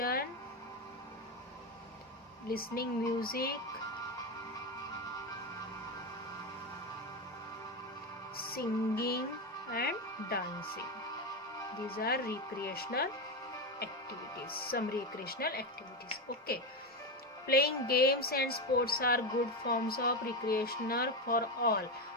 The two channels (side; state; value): both; normal; correlation 0.13